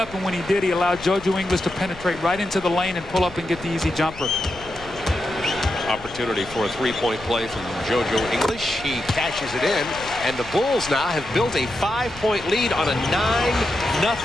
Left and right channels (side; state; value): left; noise; rumble, 18 dB below the sound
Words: and when he did, he allowed JoJo English to penetrate right into the lane and pull up and get the easy jumper. Opportunity for a 3-point play from JoJo English. He cashes it in, and the Bulls now have built a 5-point lead on a